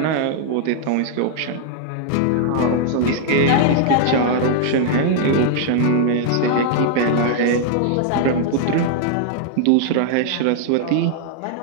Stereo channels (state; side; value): different; both; correlation 0.00